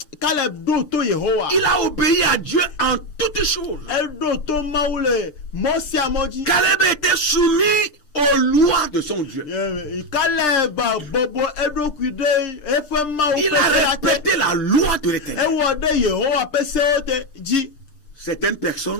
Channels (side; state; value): right; late; 6.7 ms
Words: a obéi à Dieu en toutes choses. Caleb était soumis aux lois de son Dieu. Il a respecté la loi de l'Éternel. Certaines